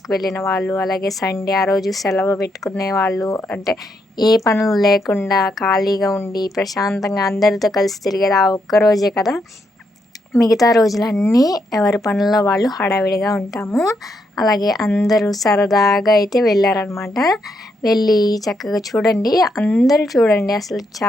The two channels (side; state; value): both; normal; correlation 0.79